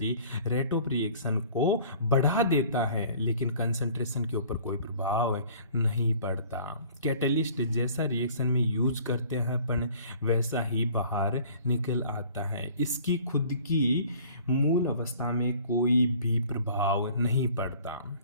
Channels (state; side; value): inverted; both; correlation -0.50